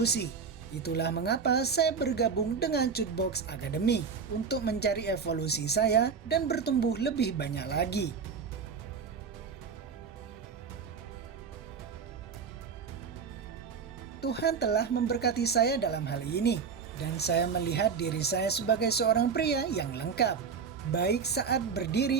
Itulah mengapa saya bergabung dengan Chutebox Academy untuk mencari evolusi saya dan bertumbuh lebih banyak lagi. Tuhan telah memberkati saya dalam hal ini, dan saya melihat diri saya sebagai seorang pria yang lengkap, baik saat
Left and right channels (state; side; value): quieter; left; 6.0 dB